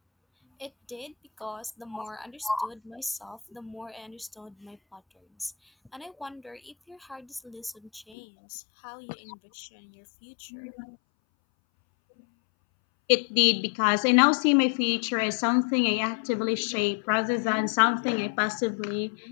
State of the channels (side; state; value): right; drops out; at 8.2 s